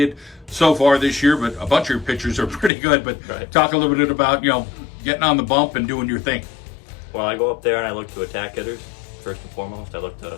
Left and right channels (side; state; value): right; drops out; at 2.7 s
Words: so far this year, but a bunch of your pitchers are pretty good. But Right. Talk a little bit about, getting on the bump and doing your thing. Well, I go up there and I look to attack hitters, first and foremost. I look to